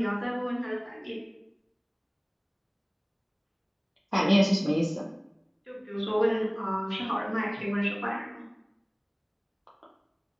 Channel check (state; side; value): identical; both; correlation 1.00